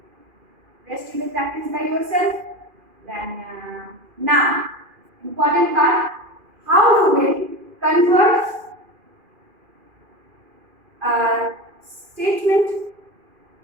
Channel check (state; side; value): late; left; 2.4 ms